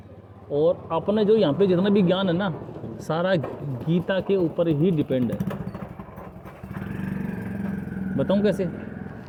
और अपने जो यहाँ पे जितना भी ज्ञान है ना, सारा गीता के ऊपर ही डिपेंड है। बताऊँ कैसे?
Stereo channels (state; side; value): identical; both; correlation 1.00